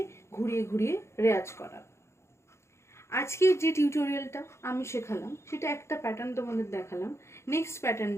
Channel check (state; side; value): late; right; 0.13 ms